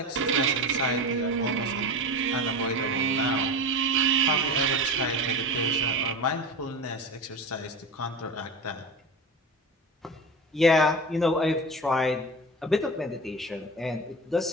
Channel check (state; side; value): normal; both; correlation 0.29